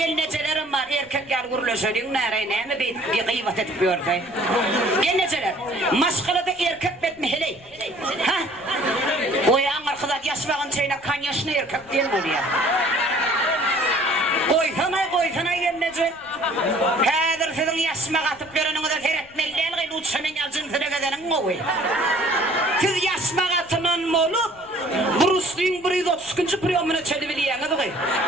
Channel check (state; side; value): noise; left; rumble, 26 dB below the sound